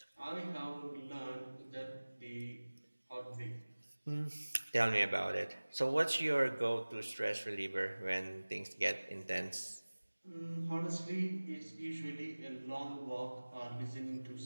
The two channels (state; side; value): inverted; both; correlation -1.00